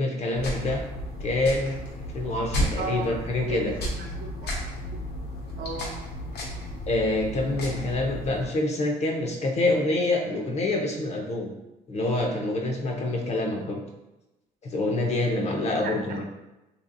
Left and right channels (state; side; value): normal; both; correlation 0.58